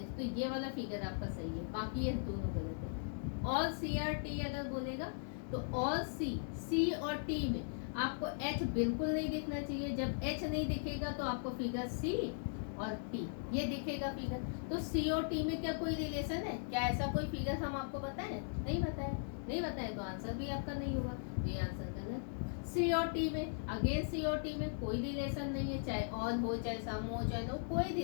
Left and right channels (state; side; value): silent; right; digital silence